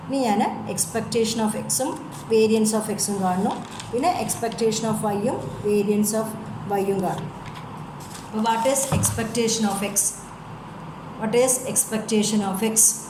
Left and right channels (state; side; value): identical; both; correlation 1.00